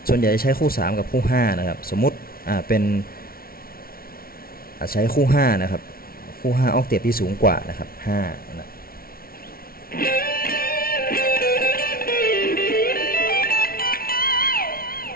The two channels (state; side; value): late; right; 0.43 ms